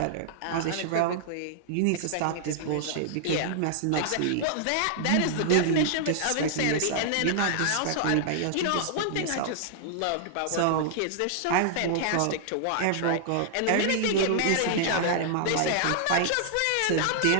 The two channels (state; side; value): different; both; correlation -0.01